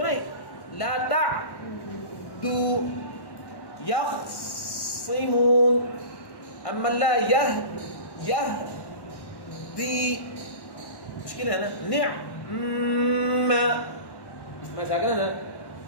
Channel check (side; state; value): right; late; 1.1 ms